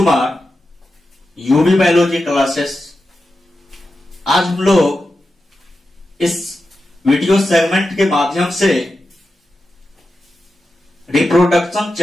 UB biology classes. आज हम लोग इस वीडियो सेगमेंट के माध्यम से रिप्रोडक्शन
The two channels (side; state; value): both; normal; correlation 0.90